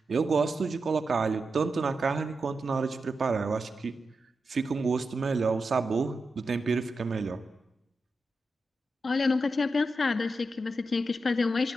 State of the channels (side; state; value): both; normal; correlation 0.88